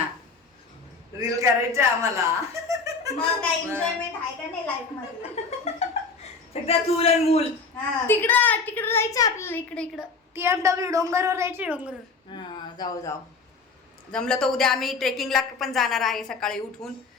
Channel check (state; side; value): quieter; right; 4.4 dB